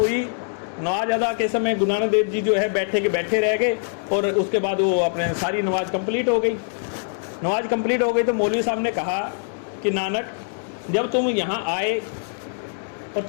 नमाज अदा के समय गुरु नानक देव जी जो है बैठे के बैठे रह गए और उसके बाद वो अपने सारी नमाज कंप्लीट हो गई। नमाज कंप्लीट हो गई तो मौलवी साहब ने कहा कि नानक, जब तुम यहाँ आए और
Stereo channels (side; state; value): right; silent; digital silence